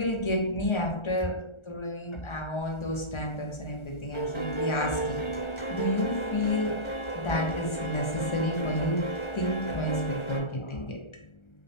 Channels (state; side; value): late; right; 1.4 ms